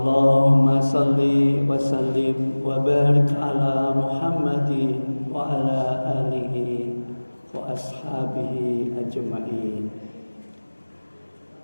salli wa sallim wa barik ala Muhammadin wa ala alihi wa ashabihi ajma'in.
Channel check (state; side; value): inverted; both; correlation -1.00